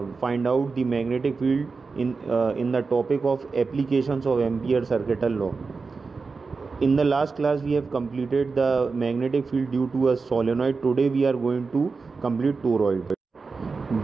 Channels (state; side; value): quieter; left; 4.5 dB